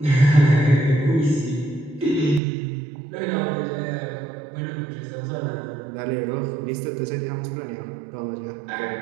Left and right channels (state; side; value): drops out; left; at 2.4 s